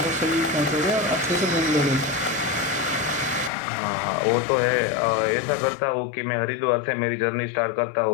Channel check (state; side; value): drops out; right; at 3.5 s